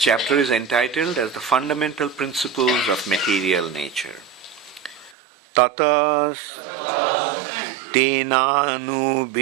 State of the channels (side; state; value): left; drops out; at 5.2 s